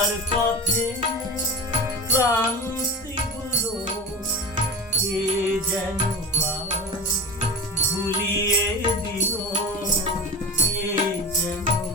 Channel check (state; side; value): normal; both; correlation 0.29